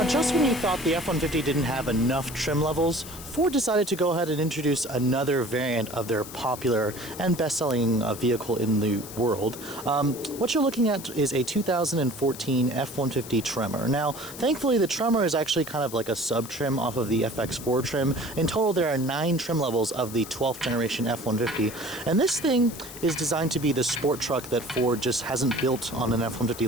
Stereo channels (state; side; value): noise; left; hiss, 13 dB below the sound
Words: Just when you thought the F-150 didn't have enough trim levels, Ford decided to go ahead and introduce another variant of their popular and best-selling vehicle in the world. What you're looking at is a 2014 F-150 Tremor. Now, thankfully, the Tremor is actually kind of like a sub-trim off of the FX4 trim. In total, there are 9 trim levels of the 12th generation F-150, and this thing is designed to be the sport truck that Ford just hasn't built on an F-150